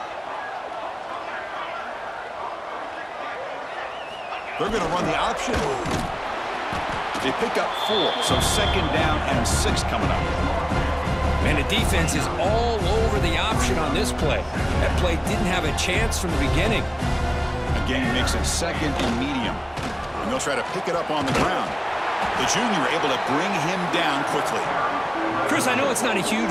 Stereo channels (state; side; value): identical; both; correlation 1.00